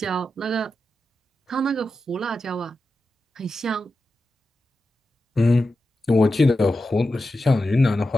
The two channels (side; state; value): both; normal; correlation 0.91